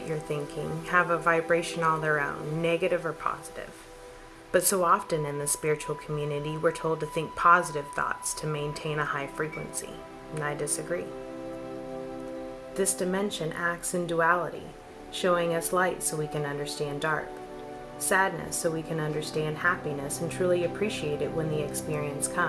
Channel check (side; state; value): both; identical; correlation 1.00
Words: you're thinking have a vibration all their own, negative or positive. But so often in the spiritual community, we're told to think positive thoughts to maintain a high frequency, and I disagree. This dimension acts in duality, showing us light so we can understand dark, sadness so we can understand happiness and truly appreciate it when the experience